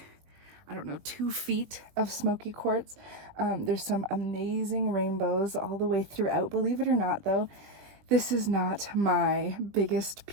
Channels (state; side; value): late; left; 20 ms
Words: I don't know, 2 feet of Smoky Quartz. There's some amazing rainbows all the way throughout. Believe it or not, though, this is not my biggest